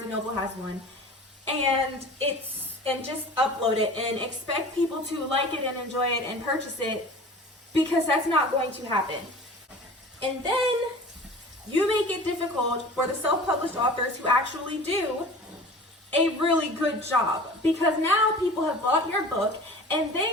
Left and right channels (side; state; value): both; normal; correlation 0.40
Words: & Noble has one, and just upload it and expect people to like it and enjoy it and purchase it, because that's not going to happen. And then you make it difficult for the self-published authors who actually do a really good job, because now people have bought your book and